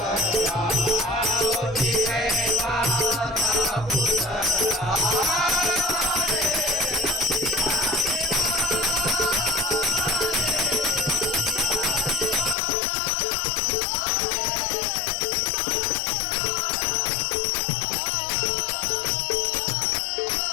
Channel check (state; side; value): drops out; right; at 12.6 s